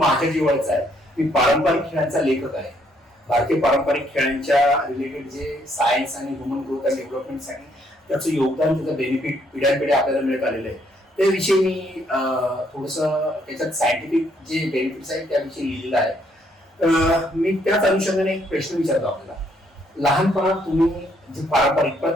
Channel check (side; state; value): both; normal; correlation 0.70